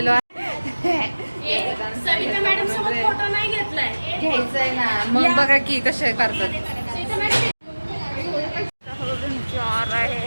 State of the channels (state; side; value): inverted; both; correlation -1.00